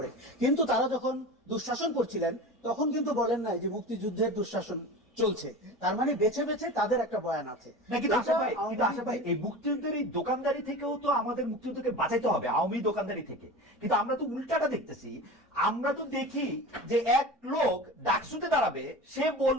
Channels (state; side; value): normal; both; correlation 0.32